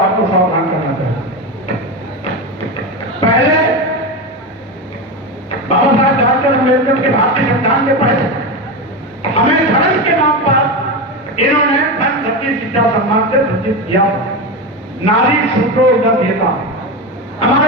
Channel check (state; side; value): normal; both; correlation 0.18